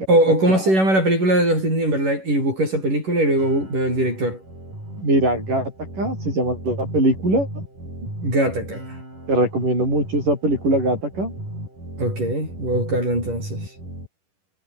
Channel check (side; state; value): left; late; 11 ms